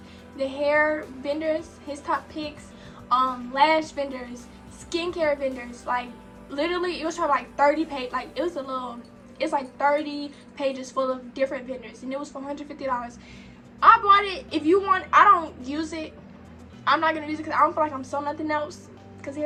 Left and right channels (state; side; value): identical; both; correlation 1.00